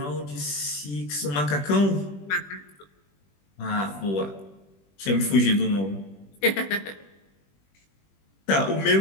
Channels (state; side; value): late; right; 21 ms